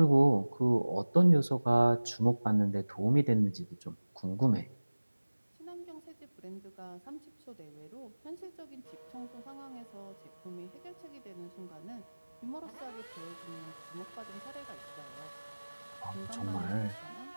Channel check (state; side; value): inverted; both; correlation -1.00